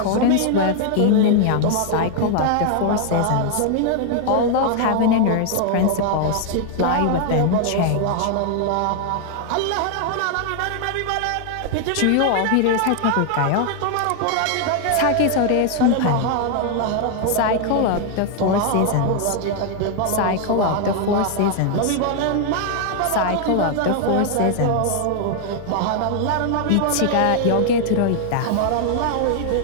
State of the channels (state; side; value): different; both; correlation 0.00